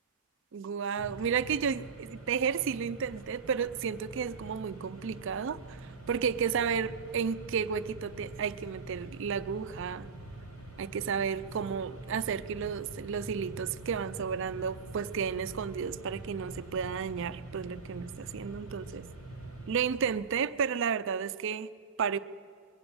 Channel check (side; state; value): left; quieter; 6.1 dB